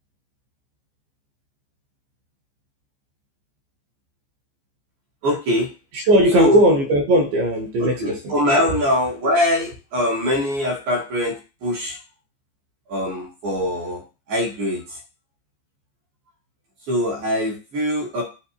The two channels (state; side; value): late; left; 15 ms